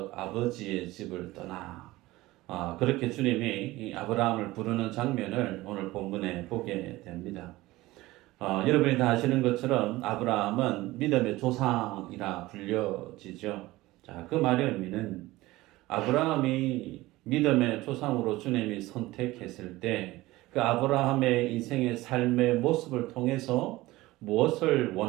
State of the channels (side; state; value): left; quieter; 18.7 dB